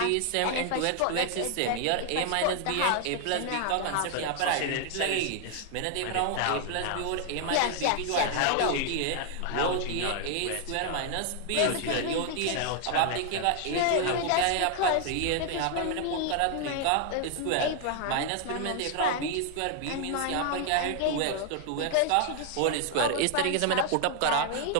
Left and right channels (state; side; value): different; both; correlation 0.00